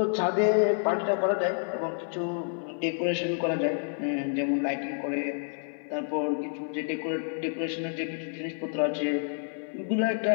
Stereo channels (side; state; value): right; silent; 59 dB below the other